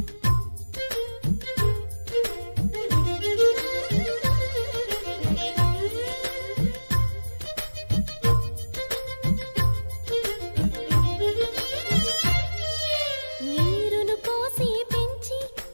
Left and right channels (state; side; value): inverted; both; correlation -1.00